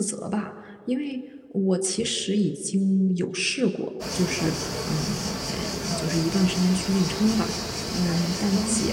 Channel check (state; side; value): identical; both; correlation 1.00